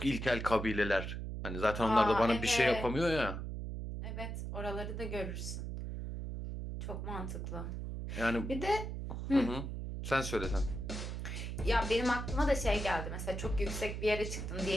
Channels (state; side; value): noise; right; hum, 5 dB below the sound